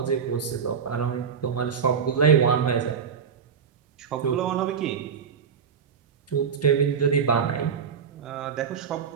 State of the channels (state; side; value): quieter; left; 6.8 dB